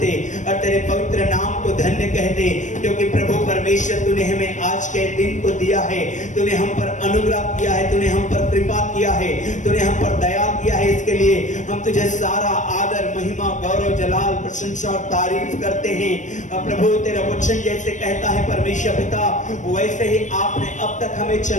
और तेरे पवित्र नाम को धन्य कहते, क्योंकि प्रभु परमेश्वर तूने हमें आज के दिन को दिया है, तूने हम पर अनुग्रह किया है, तूने हम पर कृपा किया है, तूने हम पर दया किया है। इसके लिए हम तुझे सारा आदर महिमा गौरव जलाल प्रशंसा और तारीफ करते हैं। प्रभु तेरा वचन जैसे कहता है परमेश्वर पिता, वैसे ही आपने अब तक हमें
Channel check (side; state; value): right; late; 0.36 ms